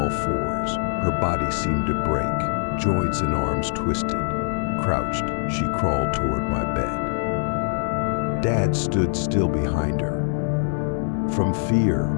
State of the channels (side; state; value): right; silent; digital silence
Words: fours. Her body seemed to break, joints and arms twisted. Crouched, she crawled toward my bed. Dad stood still behind her. From fear,